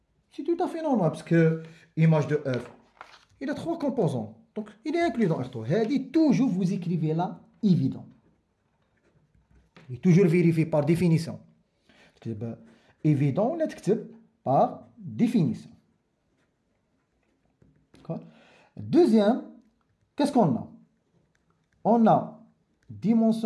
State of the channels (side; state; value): both; identical; correlation 1.00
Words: C'est tout à fait normal, parce que image de F, il a 3 composants. Donc, il est inclus dans R3. Elle dit toujours, vous écrivez là, évident. Et toujours vérifier par définition. Évident, on l'écrit par définition. Deuxième, qu'est-ce qu'on a? On a